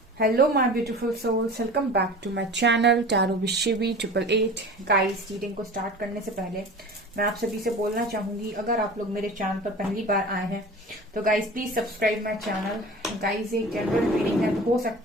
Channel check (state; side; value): normal; both; correlation 0.37